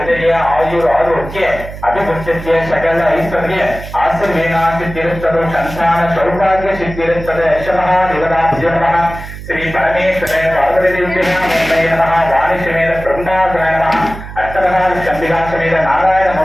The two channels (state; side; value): noise; right; hum, 12 dB below the sound